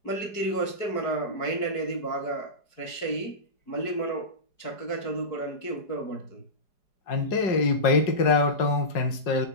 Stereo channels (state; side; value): late; right; 4.8 ms